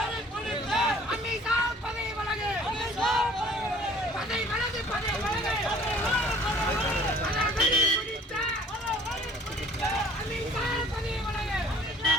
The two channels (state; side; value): normal; both; correlation 0.53